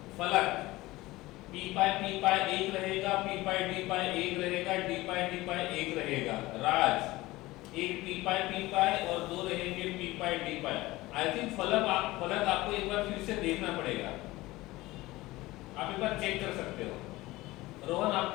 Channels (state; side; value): quieter; right; 19.2 dB